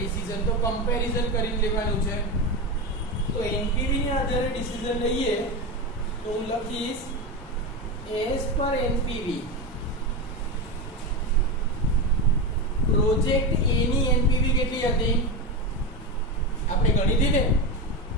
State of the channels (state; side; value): normal; both; correlation 0.17